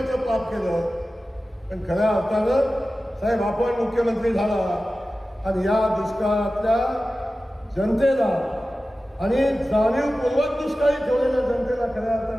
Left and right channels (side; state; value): both; normal; correlation 0.95